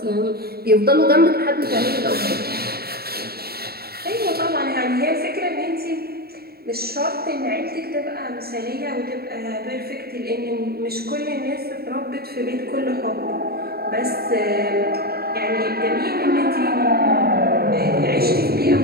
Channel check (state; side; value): late; left; 0.45 ms